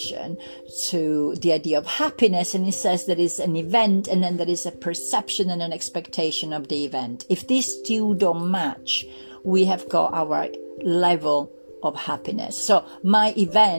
to the idea of happiness. And he says there is an event, and then there is a perception and an expectation of the event. If these two don't match, we have got our level of happiness. So my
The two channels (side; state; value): both; inverted; correlation -1.00